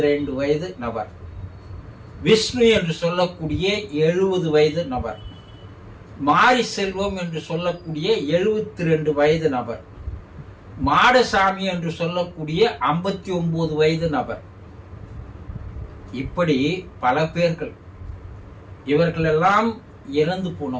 வயது நபர், விஷ்ணு என்று சொல்லக்கூடிய 70 வயது நபர், மாரி செல்வம் என்று சொல்லக்கூடிய 72 வயது நபர், மாடசாமி என்று சொல்லக்கூடிய 59 வயது நபர். இப்படி பல பேர்கள். இவர்களெல்லாம் இறந்து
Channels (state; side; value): identical; both; correlation 1.00